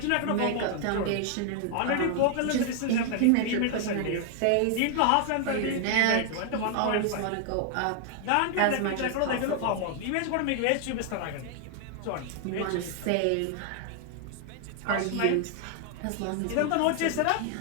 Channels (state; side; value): different; both; correlation 0.00